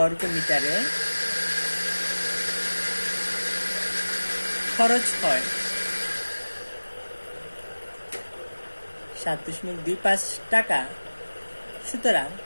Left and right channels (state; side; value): inverted; both; correlation -1.00